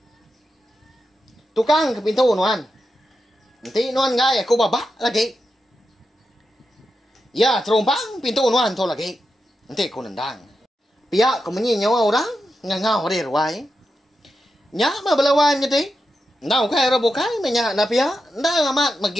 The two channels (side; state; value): both; normal; correlation 0.88